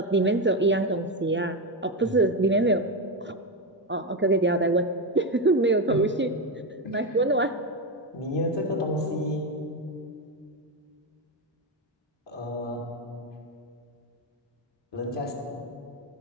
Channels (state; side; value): normal; both; correlation 0.11